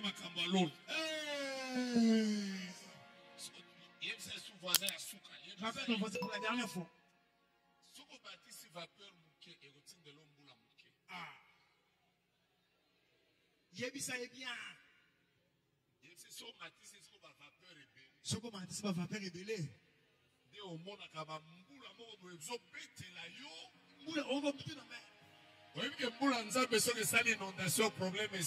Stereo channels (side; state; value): both; identical; correlation 1.00